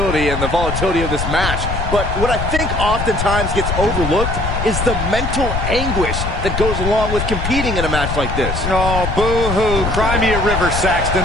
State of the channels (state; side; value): noise; left; rumble, 3 dB below the sound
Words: and the volatility of this match, but what I think oftentimes gets overlooked is the mental anguish that goes along with competing in a match like this. Oh, boo-hoo. Cry me a river, Saxton.